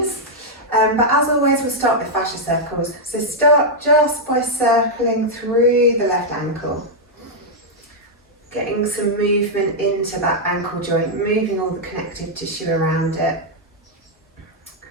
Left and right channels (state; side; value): normal; both; correlation -0.04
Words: But as always, we'll start with fascia circles. So start just by circling through the left ankle. Getting some movement into that ankle joint, moving all the connective tissue around it.